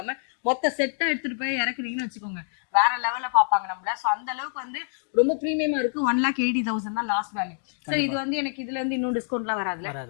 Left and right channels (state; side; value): silent; right; digital silence